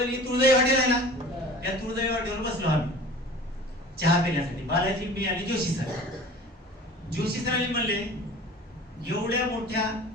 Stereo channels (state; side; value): normal; both; correlation 0.41